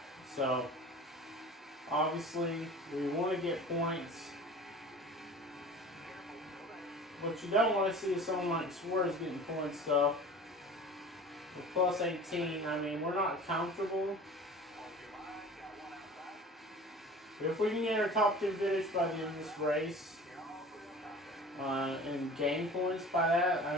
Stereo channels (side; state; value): both; normal; correlation 0.41